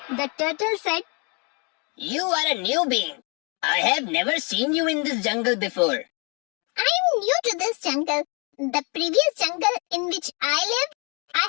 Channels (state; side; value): quieter; right; 33.2 dB